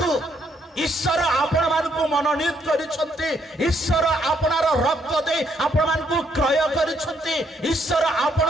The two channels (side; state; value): both; normal; correlation 0.72